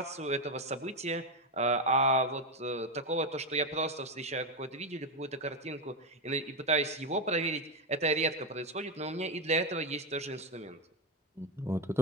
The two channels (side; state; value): both; normal; correlation 0.11